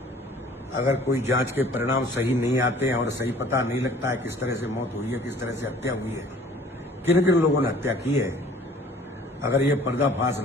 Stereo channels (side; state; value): both; normal; correlation 0.51